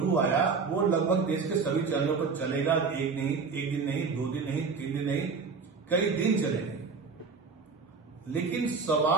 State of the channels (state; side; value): quieter; left; 4.9 dB